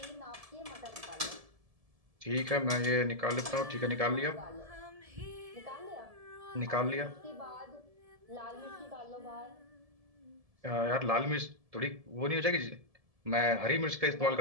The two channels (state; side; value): late; left; 1.7 ms